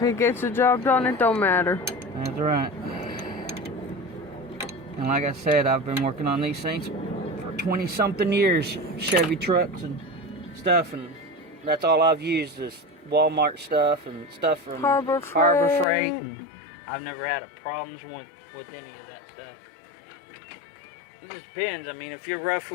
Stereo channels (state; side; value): drops out; right; at 15.9 s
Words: gets the job done, it don't matter. That's right. And like I said, I've been working on these things for 20 something years. Chevy trucks and stuff, and that's all I've used is Walmart stuff and stuff from Harbor Freight. And I've never had a problems with any of that stuff. It just depends. I mean, if you're rough